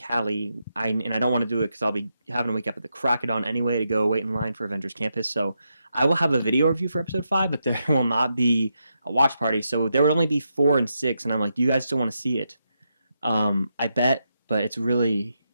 I don't want to do it because I'll be having to wake up at the crack of dawn anyway to go wait in line for Avengers Campus. So I will have a video review for episode 5, but there will not be a watch party. So there will only be 4 and 6, and I'm like, do you guys still want to see it? I bet, but it's really.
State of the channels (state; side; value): inverted; both; correlation -0.84